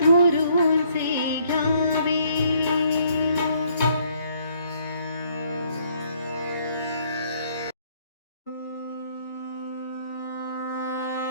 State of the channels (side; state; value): both; inverted; correlation -0.66